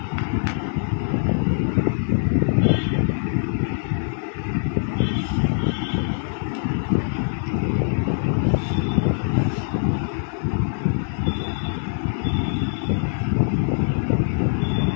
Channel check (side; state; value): right; silent; digital silence